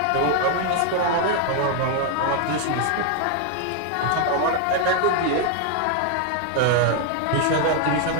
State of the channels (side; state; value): both; different; correlation 0.00